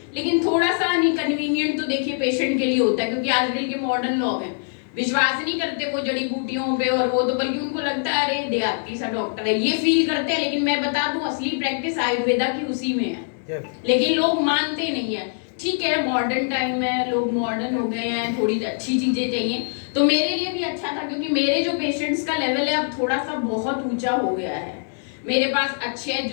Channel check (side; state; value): right; silent; digital silence